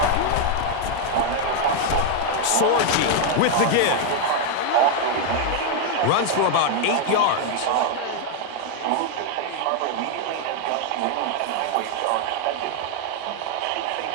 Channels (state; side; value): different; both; correlation 0.00